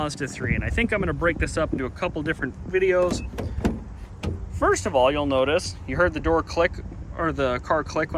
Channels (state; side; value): identical; both; correlation 1.00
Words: and I think I'm going to break this up into a couple different videos. First of all, you'll notice you heard the door click, or the car click